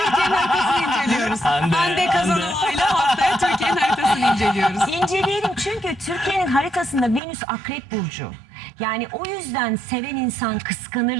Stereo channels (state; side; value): drops out; left; at 7.2 s